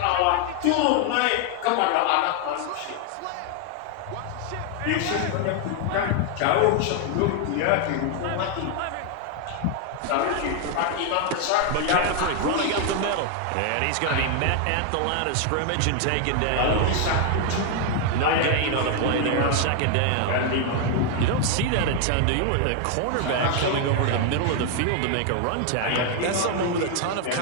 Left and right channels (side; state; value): both; different; correlation 0.01